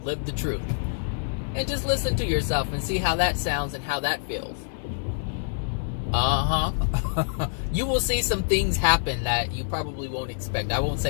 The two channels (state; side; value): silent; right; digital silence